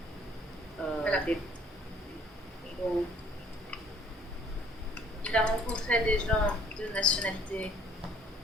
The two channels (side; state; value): both; normal; correlation 0.57